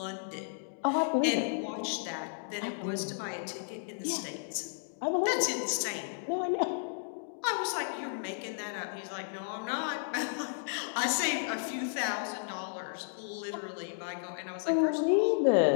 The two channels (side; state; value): right; silent; digital silence